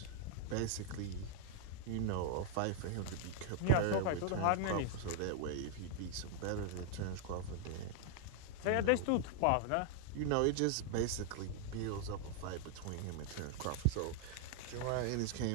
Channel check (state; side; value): different; both; correlation 0.00